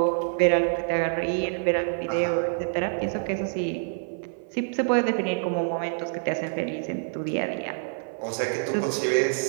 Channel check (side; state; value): left; silent; 56 dB below the other